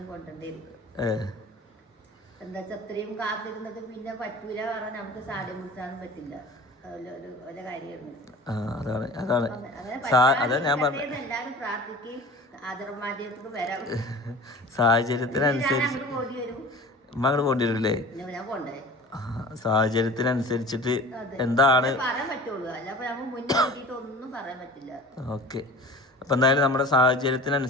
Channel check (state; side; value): normal; both; correlation 0.40